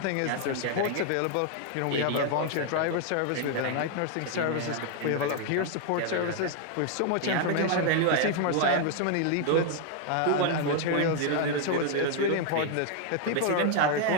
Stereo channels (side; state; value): both; different; correlation 0.00